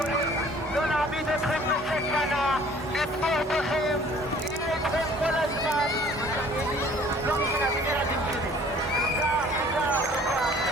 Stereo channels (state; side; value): normal; both; correlation 0.53